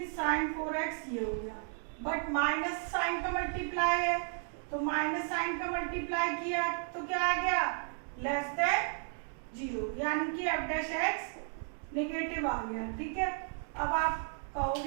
साइन 4x ये हो गया, बट माइनस साइन का मल्टीप्लाई है, तो माइनस साइन का मल्टीप्लाई किया तो क्या आ गया लेस देन 0, यानी कि एफ डैश एक्स नेगेटिव आ गया। ठीक है, अब आप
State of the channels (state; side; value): silent; left; 55 dB below the other